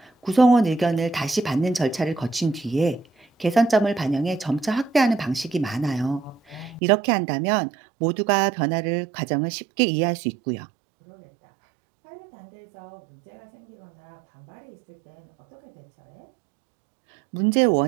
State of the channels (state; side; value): drops out; left; at 6.8 s